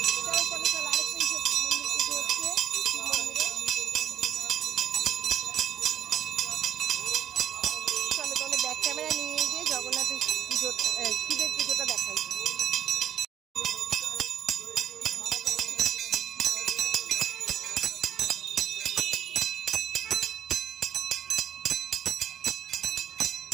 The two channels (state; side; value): quieter; left; 10.4 dB